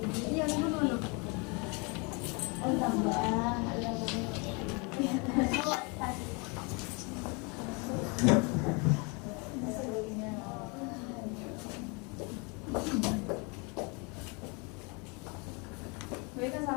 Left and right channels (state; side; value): quieter; right; 31.2 dB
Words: Iya, mana? Oh, tambah. Baik,